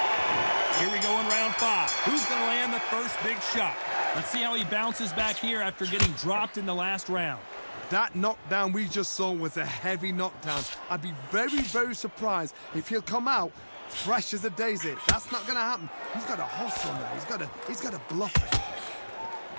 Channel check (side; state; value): both; inverted; correlation -1.00